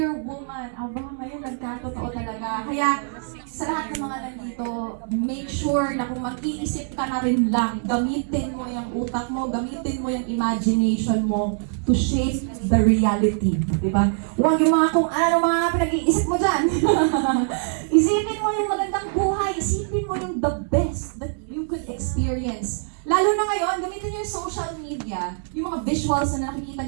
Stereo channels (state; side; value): silent; left; digital silence